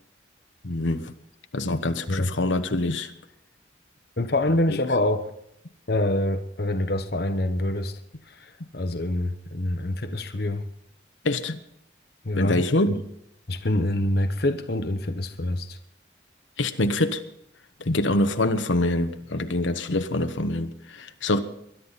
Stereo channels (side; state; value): both; normal; correlation 0.47